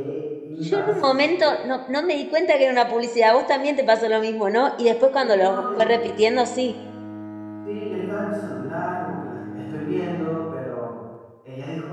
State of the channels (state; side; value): identical; both; correlation 1.00